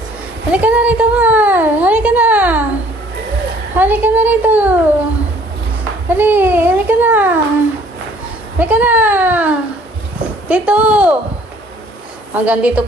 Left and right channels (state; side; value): normal; both; correlation 0.57